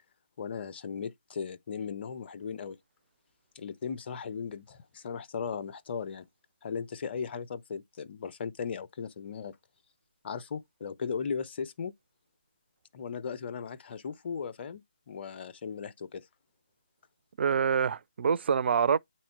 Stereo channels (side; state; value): both; inverted; correlation -0.62